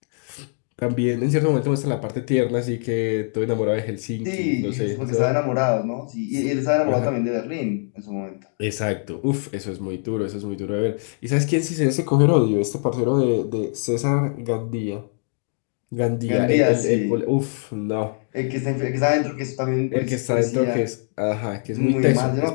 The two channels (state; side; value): silent; right; 60 dB below the other